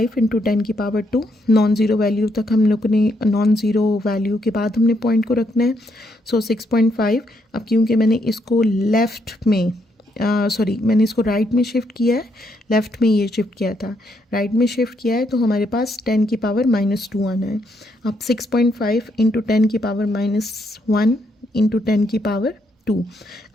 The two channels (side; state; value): both; normal; correlation 0.75